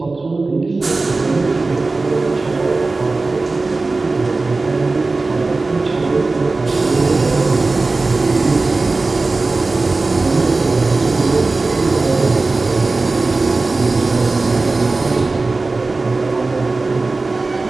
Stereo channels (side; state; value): left; quieter; 3.5 dB